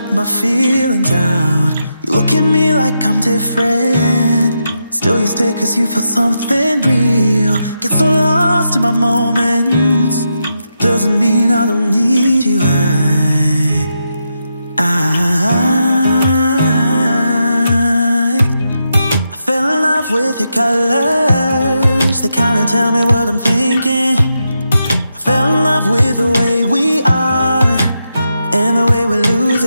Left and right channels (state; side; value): inverted; both; correlation -0.85